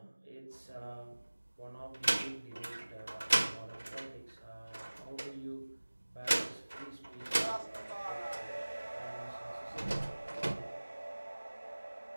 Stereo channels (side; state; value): both; inverted; correlation -1.00